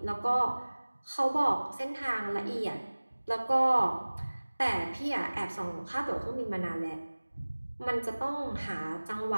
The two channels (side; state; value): both; inverted; correlation -1.00